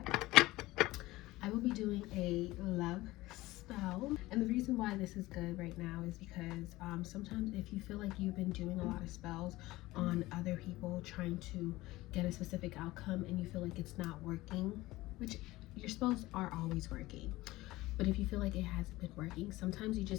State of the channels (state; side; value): quieter; right; 18.6 dB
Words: I will be doing a love spell, and the reason why this is good right now is because sometimes if you feel like you've been doing a lot of spells on other people trying to get a specific outcome and you feel like it's not working, which your spells are always working, but if you feel like it hasn't been working, sometimes it